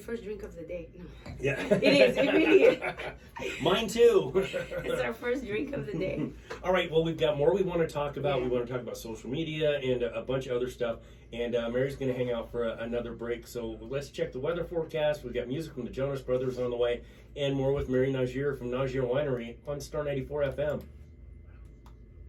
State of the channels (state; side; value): identical; both; correlation 1.00